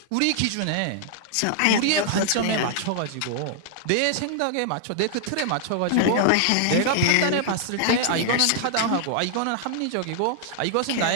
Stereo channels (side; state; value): both; different; correlation -0.01